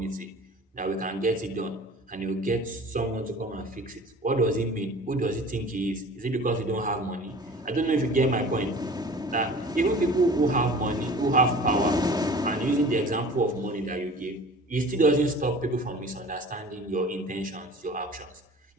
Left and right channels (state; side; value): normal; both; correlation 0.43